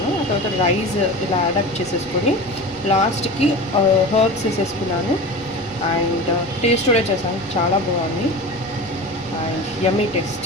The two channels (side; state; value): both; normal; correlation 0.31